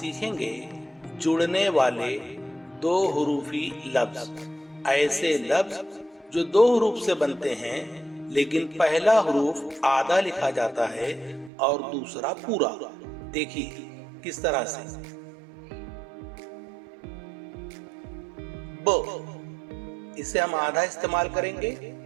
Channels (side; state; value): left; drops out; at 11.5 s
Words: जुड़ने वाले दो हुरूफी लफ्ज। ऐसे लफ्ज जो दो हुरूफ से बनते हैं लेकिन पहला हुरूफ आधा लिखा जाता है और दूसरा पूरा। देखिए किस तरह से। ब, इसे हम आधा इस्तेमाल करेंगे